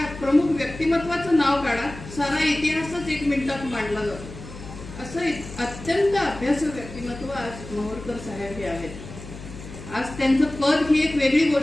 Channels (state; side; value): noise; left; hum, 14 dB below the sound